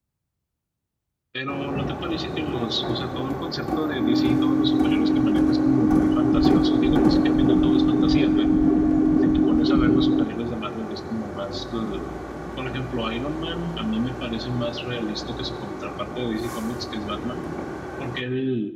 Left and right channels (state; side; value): identical; both; correlation 1.00